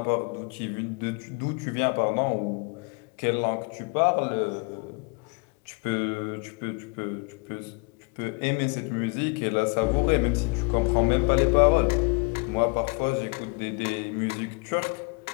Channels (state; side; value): quieter; right; 30.9 dB